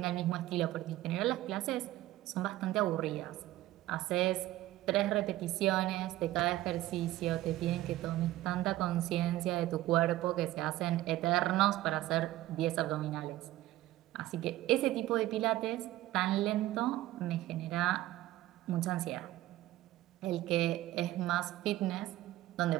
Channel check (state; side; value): quieter; left; 15.6 dB